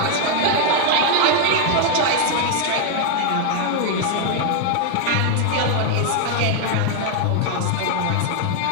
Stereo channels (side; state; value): both; different; correlation 0.00